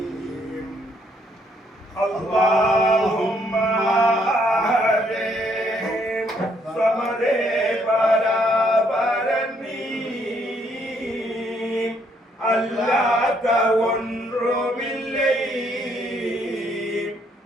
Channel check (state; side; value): normal; both; correlation 0.70